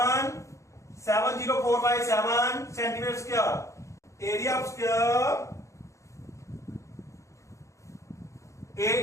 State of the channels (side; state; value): right; late; 0.15 ms